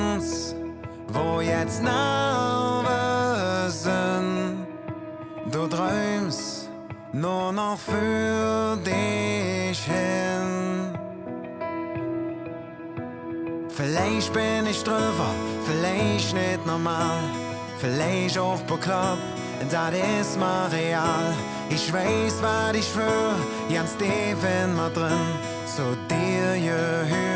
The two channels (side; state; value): both; identical; correlation 1.00